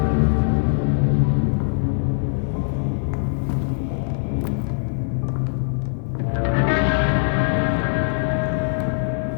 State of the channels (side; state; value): right; silent; digital silence